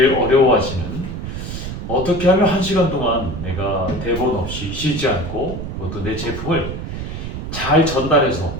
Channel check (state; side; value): noise; right; rumble, 6 dB below the sound